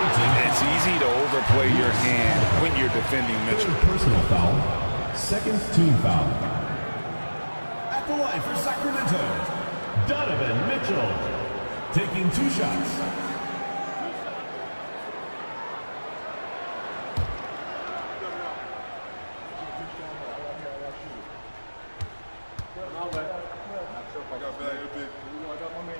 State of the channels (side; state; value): both; inverted; correlation -1.00